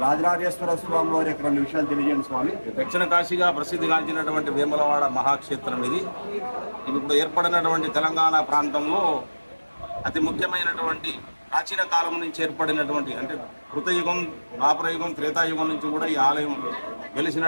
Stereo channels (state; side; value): inverted; both; correlation -1.00